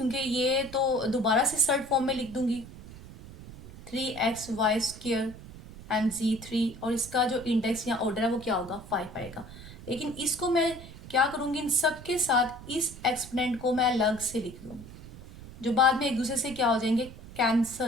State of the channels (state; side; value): noise; right; rumble, 16 dB below the sound